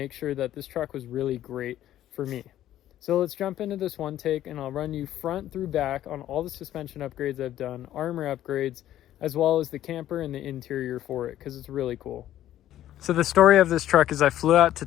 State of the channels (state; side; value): quieter; right; 12.6 dB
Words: sure that this truck was really great for me. So let's jump into this one take and I'll run you front through back on all the suspension upgrades I've done, armor upgrades, as well as the camper and the interior for it, because it's really cool. So the story of this truck is I flew out to